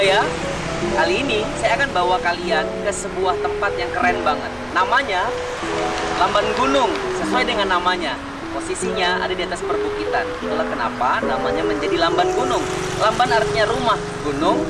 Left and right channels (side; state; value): both; identical; correlation 1.00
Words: kali ini saya akan bawa kalian ke sebuah tempat yang keren banget. Namanya Lamban Gunung, sesuai dengan namanya. Posisinya ada di atas perbukitan. Itulah kenapa namanya menjadi Lamban Gunung. Lamban artinya rumah, gunung